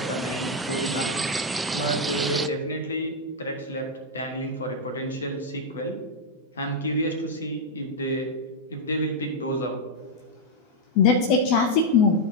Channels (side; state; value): both; normal; correlation -0.01